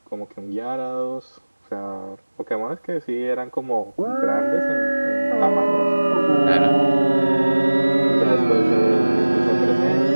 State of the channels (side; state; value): both; inverted; correlation -1.00